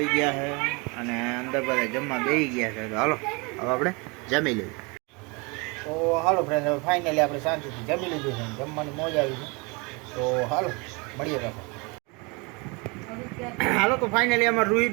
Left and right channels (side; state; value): left; quieter; 29.2 dB